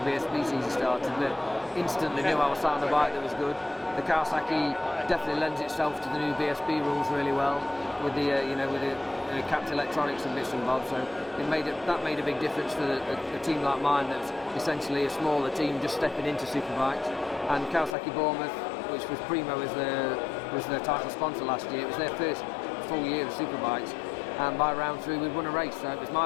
BSB season started, but instantly knew I was sat on a bike that was good. The Kawasaki definitely lends itself to the new BSB rules really well, with the capped electronics and bits and bobs. So that made a big difference for a team like mine, that's essentially a smaller team just stepping into superbikes. And Kawasaki Bournemouth, which was Primo as their title sponsor last year, it was their first full year of superbikes, and by round 3 we'd won a race. So it was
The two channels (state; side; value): drops out; right; at 17.9 s